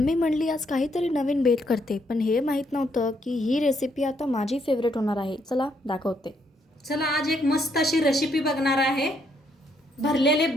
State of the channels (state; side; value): normal; both; correlation 0.73